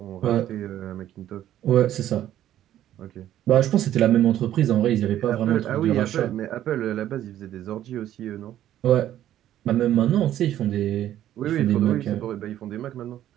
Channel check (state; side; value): quieter; left; 12.2 dB